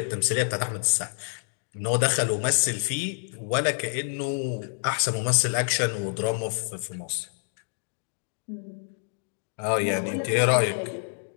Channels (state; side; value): silent; right; 60 dB below the other